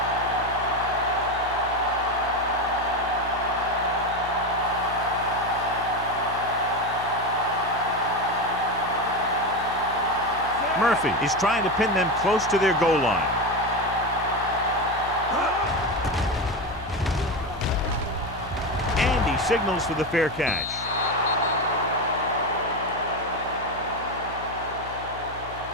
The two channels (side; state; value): left; noise; hum, 15 dB below the sound